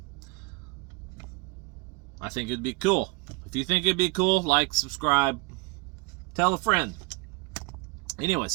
I think it'd be cool. If you think it'd be cool, like, subscribe, tell a friend.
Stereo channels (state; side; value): quieter; left; 27.6 dB